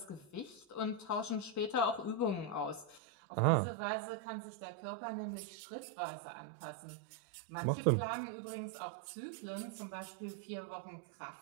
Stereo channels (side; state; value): left; drops out; at 3.0 s